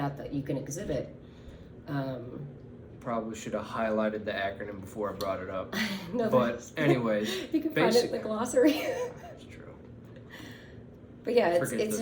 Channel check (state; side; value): identical; both; correlation 1.00